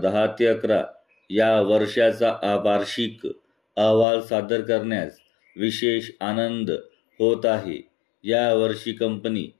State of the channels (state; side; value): drops out; right; at 4.0 s